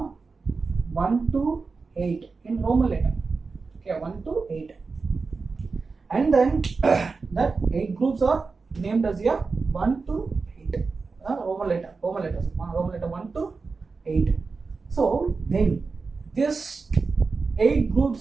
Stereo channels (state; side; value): quieter; left; 4.4 dB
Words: 1 to 8 in Roman letter. Okay, 1 to 8. And then that 8 groups are named as 1 to 8. Roman letter 1 to 8. So then this 8